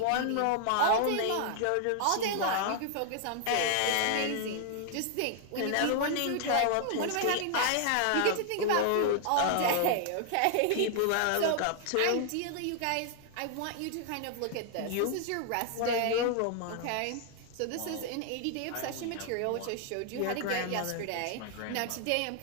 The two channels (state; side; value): different; both; correlation 0.00